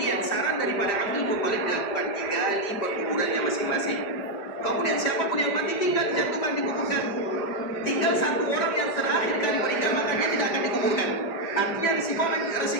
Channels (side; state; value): right; late; 5.1 ms